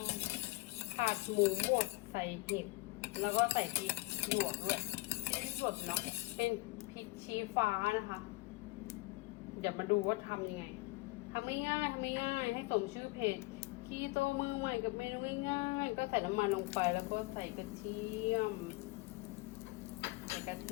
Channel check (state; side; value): quieter; right; 23.2 dB